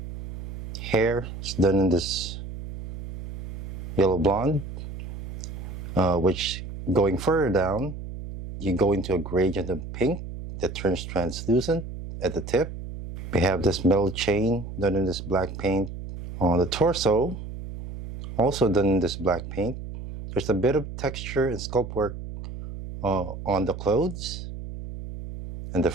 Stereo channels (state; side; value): noise; right; hum, 9 dB below the sound